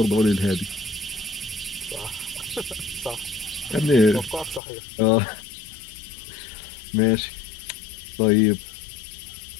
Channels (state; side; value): drops out; right; at 4.6 s